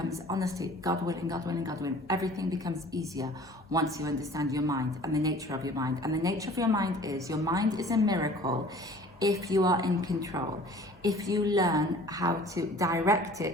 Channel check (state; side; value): normal; both; correlation 0.48